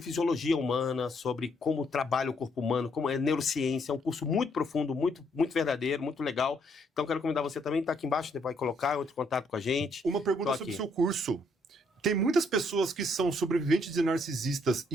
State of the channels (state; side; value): normal; both; correlation 0.71